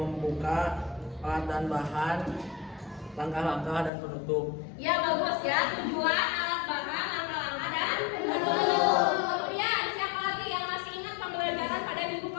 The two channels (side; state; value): right; drops out; at 3.9 s